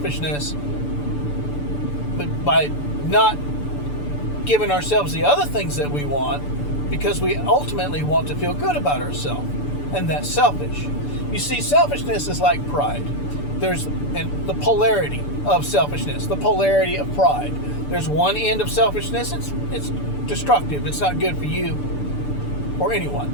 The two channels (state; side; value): late; right; 6.9 ms